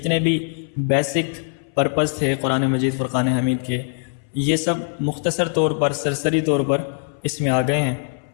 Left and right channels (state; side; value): silent; right; 59 dB below the other